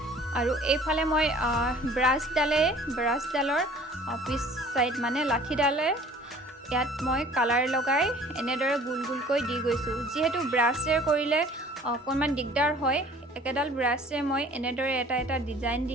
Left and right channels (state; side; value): normal; both; correlation 0.50